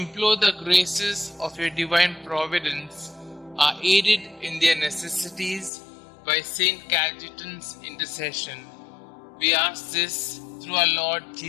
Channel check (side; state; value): right; drops out; at 5.7 s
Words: the graces of your divine providence are aided in their necessities by St Cajetan's intercession. We ask this through our Lord